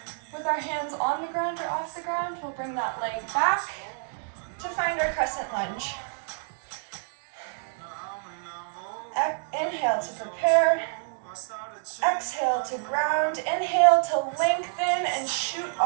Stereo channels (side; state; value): left; silent; digital silence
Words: our hands on the ground or off the ground, we'll bring that leg back to find our crescent lunge. Inhale to prepare. Exhale to ground. Inhale to lengthen and shoot